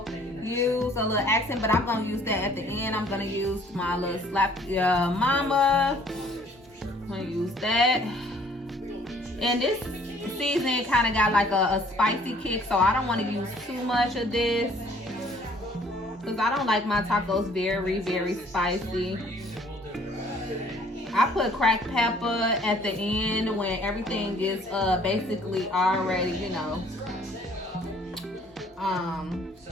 use a little accent, but I'm gonna use that at the end. I'm gonna use my little slap mama. I'm gonna use that. And this season kind of got like a spicy kick, so I don't want to use too much of this because I don't like my tacos very, very spicy. I put cracked pepper at the end when everything is basically already, you know,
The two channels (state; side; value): normal; both; correlation 0.58